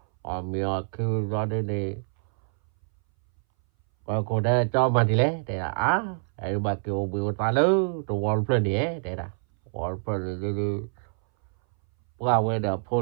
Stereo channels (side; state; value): left; silent; 61 dB below the other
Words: ở miệng kêu ra đi này và cô đây cho mà đi lấy để là ai bà kêu biểu ta lớn đồ wall plan đấy để là wall plan đi qua về đó